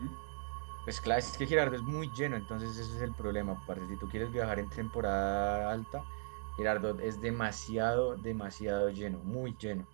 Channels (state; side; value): silent; left; digital silence